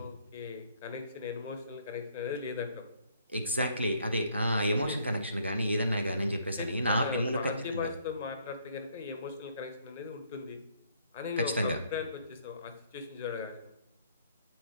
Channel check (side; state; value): both; inverted; correlation -0.65